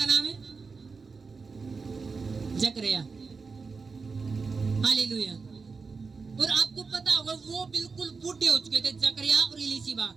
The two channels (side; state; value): left; quieter; 4.7 dB